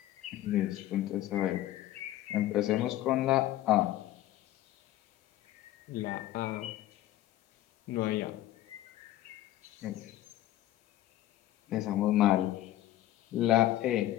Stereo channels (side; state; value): right; quieter; 14.3 dB